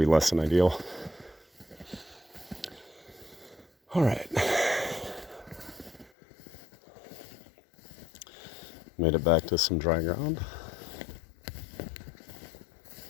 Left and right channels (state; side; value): drops out; right; at 6.1 s